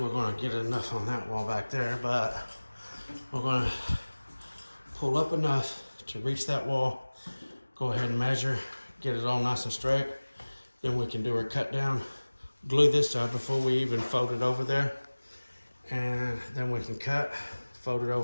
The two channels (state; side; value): inverted; both; correlation -1.00